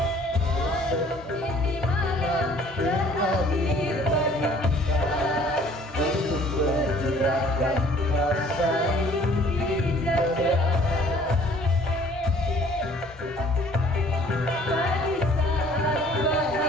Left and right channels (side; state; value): both; normal; correlation 0.55